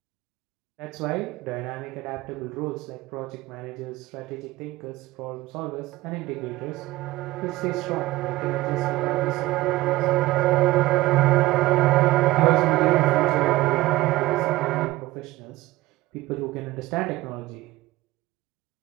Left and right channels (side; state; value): left; quieter; 18.2 dB